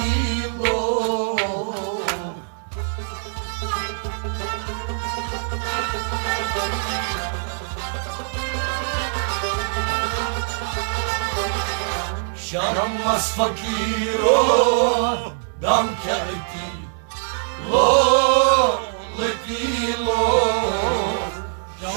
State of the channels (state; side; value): silent; left; digital silence